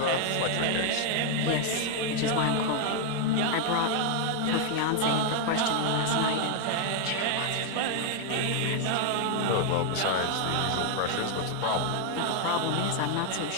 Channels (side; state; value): both; different; correlation 0.00